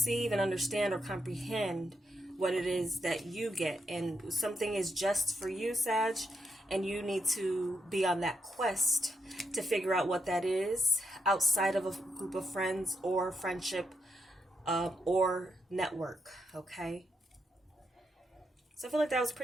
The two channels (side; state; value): both; normal; correlation 0.81